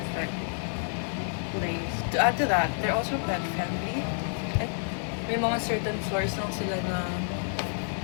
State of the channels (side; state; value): right; silent; digital silence